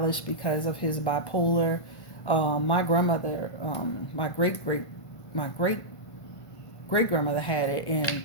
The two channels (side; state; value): right; late; 1.5 ms